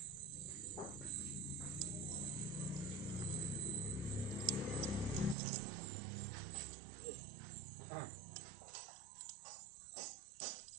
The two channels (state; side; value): drops out; left; at 5.4 s